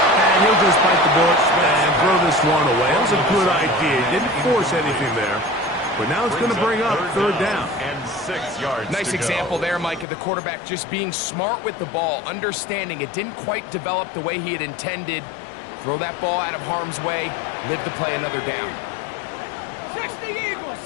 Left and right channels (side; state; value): right; drops out; at 10.1 s